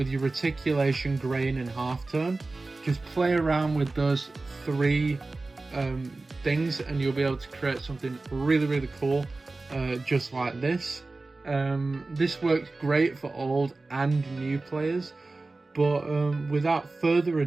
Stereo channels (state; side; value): quieter; left; 3.4 dB